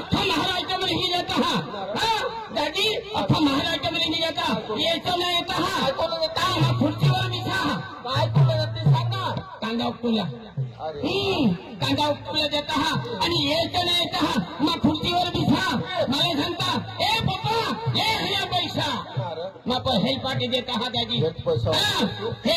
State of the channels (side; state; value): both; identical; correlation 1.00